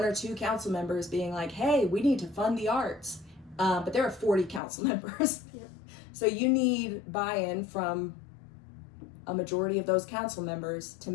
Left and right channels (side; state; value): right; drops out; at 4.6 s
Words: or two council members being like, hey, we need to fund the arts. But there are 40 council members. Yep. So you need buy-in from a majority of those council members to